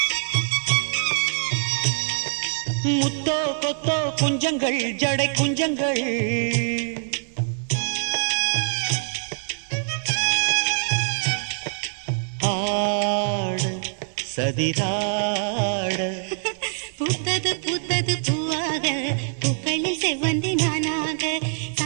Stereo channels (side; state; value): left; silent; digital silence